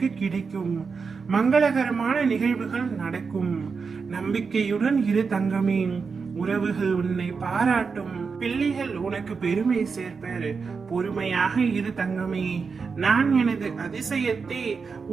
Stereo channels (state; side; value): quieter; left; 5.2 dB